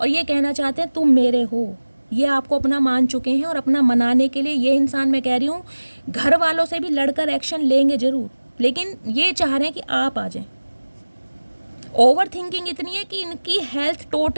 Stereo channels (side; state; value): both; inverted; correlation -1.00